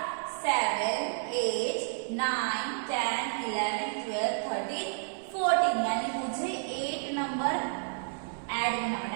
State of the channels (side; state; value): left; silent; 57 dB below the other